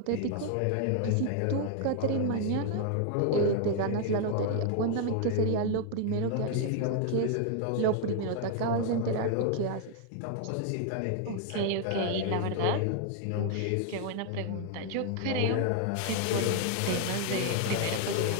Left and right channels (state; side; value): different; both; correlation 0.00